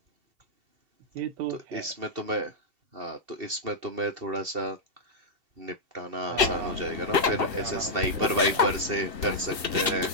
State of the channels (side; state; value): left; late; 2.7 ms